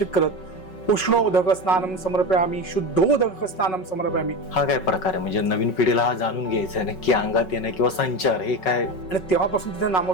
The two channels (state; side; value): late; right; 5.4 ms